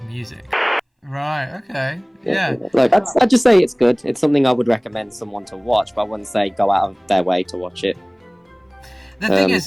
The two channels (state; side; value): identical; both; correlation 1.00